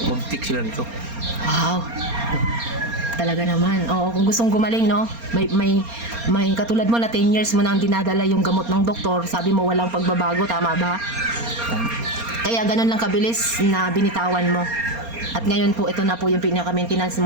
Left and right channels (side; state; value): left; late; 4.3 ms